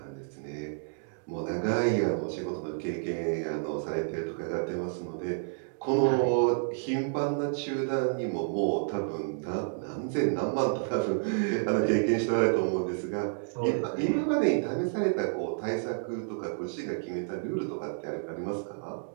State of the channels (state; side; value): silent; left; digital silence